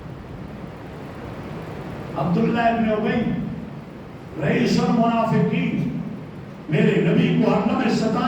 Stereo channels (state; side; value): identical; both; correlation 1.00